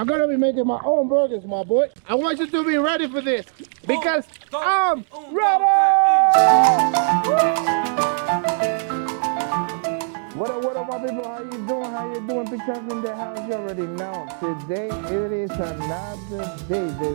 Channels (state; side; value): silent; left; 63 dB below the other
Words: gonna be making my own burgers, my boy. I want you to be ready for this because I'm ready! What up, my people? How you doing? How you doing? Pete Chef in the house, you already know. Today, it is another day,